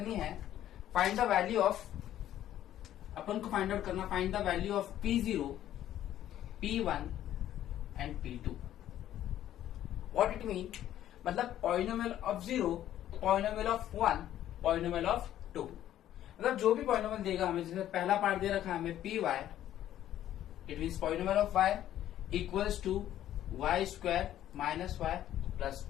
है। फाइंड द वैल्यू ऑफ, अपन को फाइंड आउट करना, find the value of P0, P1 and P2। What it mean, मतलब polynomial of 0, polynomial of 1, polynomial of 2। मतलब जो भी पॉलिनोमियल देगा हमें, जैसे पहला पार्ट दे रखा है हमें p y, it means polynomial of y equals to y square minus y plus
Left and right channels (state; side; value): quieter; right; 12.1 dB